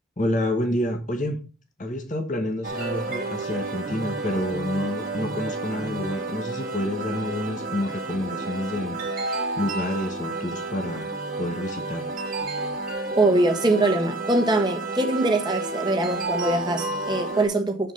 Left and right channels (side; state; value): both; normal; correlation 0.51